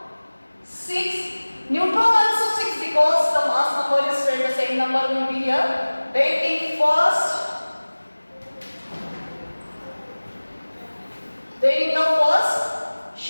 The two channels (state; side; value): inverted; both; correlation -1.00